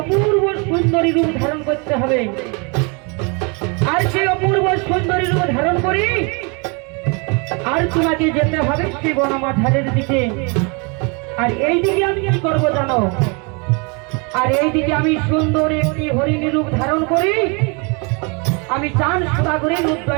সুন্দরী রূপ ধারণ করতে হবে। আর সেই অপূর্ব সুন্দরী রূপ ধারণ করি আর তোমাকে যেতে হবে সেই বনমাঝারের দিকে। আর এই দিকে আমি কি করবো জানো? আর এই দিকে আমি সুন্দর একটি হরিণী রূপ ধারণ করি আমি চাঁদ সদাগরের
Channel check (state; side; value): quieter; left; 32.4 dB